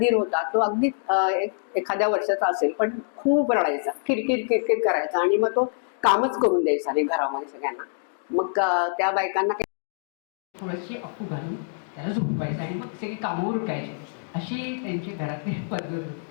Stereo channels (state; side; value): silent; right; digital silence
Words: होता तो अगदी एखाद्या वर्षाचा असेल पण खूप रडायचा, किरकिर किरकिर करायचा आणि मग तो कामच करून द्यायचा नाही घरामध्ये सगळ्यांना. मग त्या बायकांना थोडीशी अफू घालून त्याला झोपवायचं आणि मग सगळी कामं उरकायची, अशी त्यांची घरातली पद्धत होती.